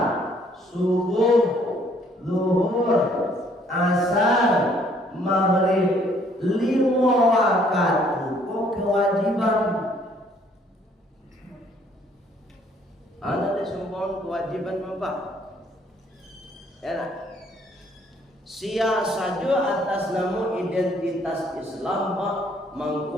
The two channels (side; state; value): both; normal; correlation 0.63